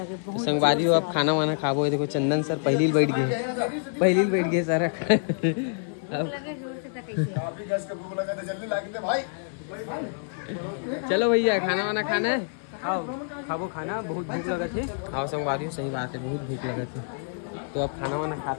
बहुत संगवारी हो अब खाना वाना खाबो। देखो चंदन सर पहली बैठ गए सर लगे जोर से तक कैसे भूख लगा तो जल्दी ला के भाई। चलो भैया खाना वाना खाना है आओ खाबो खाना बहुत भूख लगा थे। आओ संगवारी हो सही बात है बहुत भूख लगा थे तो अब खाना वाना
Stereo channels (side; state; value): right; silent; digital silence